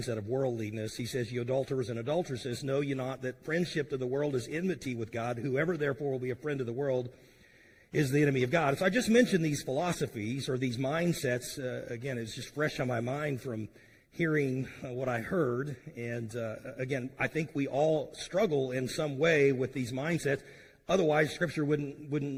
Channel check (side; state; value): both; identical; correlation 1.00